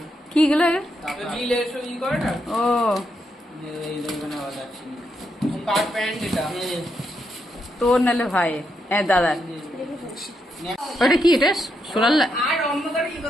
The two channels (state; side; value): normal; both; correlation 0.81